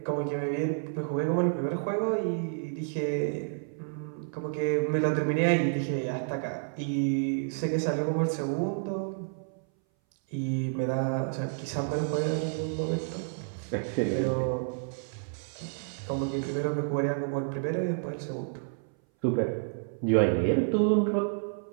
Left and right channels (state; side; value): silent; left; 58 dB below the other